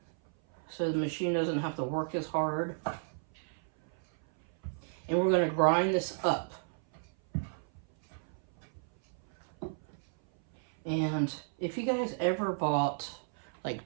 so the machine doesn't have to work as hard. And we're going to grind this up. And if you guys ever bought like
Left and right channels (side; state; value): left; silent; 56 dB below the other